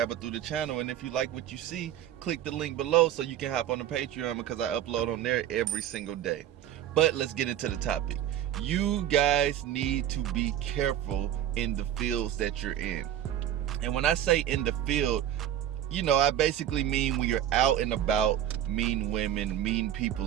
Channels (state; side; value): quieter; left; 11.2 dB